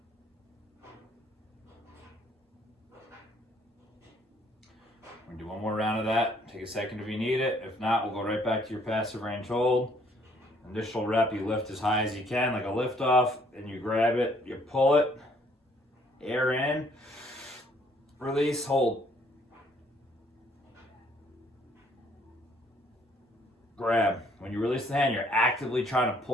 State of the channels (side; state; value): both; normal; correlation 0.64